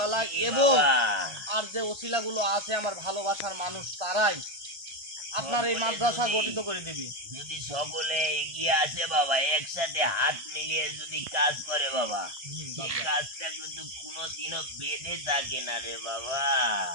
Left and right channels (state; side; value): late; left; 1.5 ms